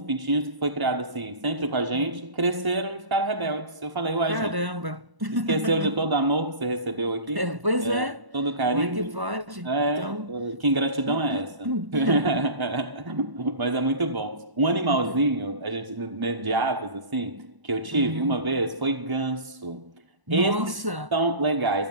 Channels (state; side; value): late; left; 1.1 ms